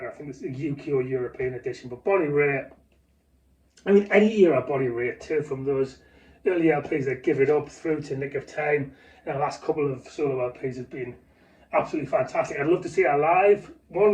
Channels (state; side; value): identical; both; correlation 1.00